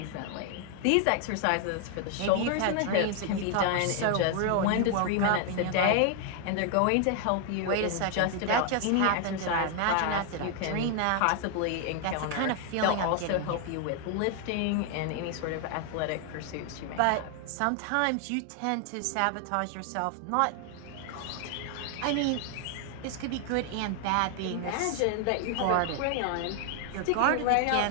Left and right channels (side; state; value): both; different; correlation 0.00